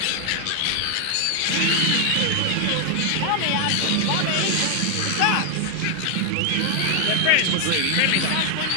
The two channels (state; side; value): different; both; correlation 0.00